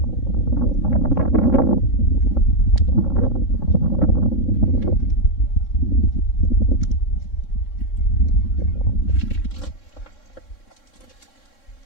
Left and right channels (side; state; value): right; late; 3.6 ms